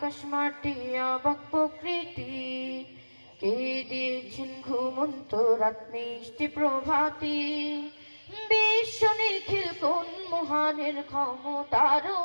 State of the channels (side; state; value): both; inverted; correlation -1.00